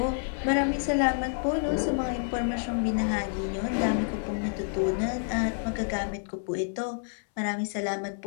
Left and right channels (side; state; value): right; silent; 59 dB below the other